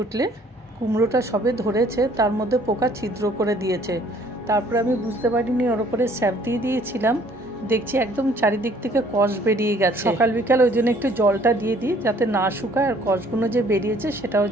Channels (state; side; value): normal; both; correlation 0.59